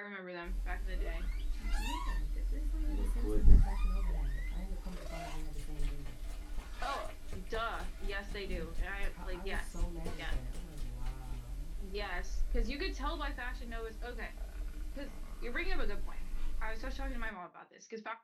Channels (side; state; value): both; identical; correlation 1.00